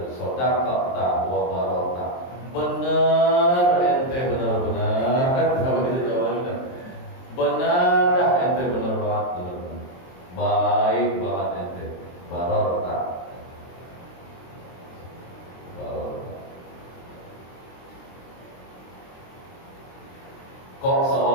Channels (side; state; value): right; late; 23 ms